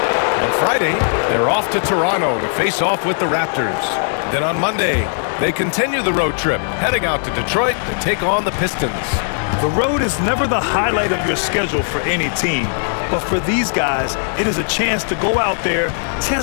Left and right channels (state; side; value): silent; right; digital silence